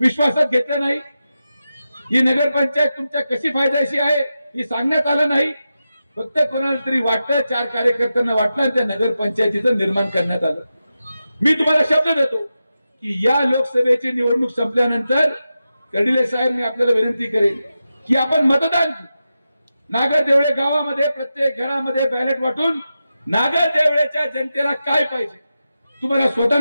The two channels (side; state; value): both; inverted; correlation -0.91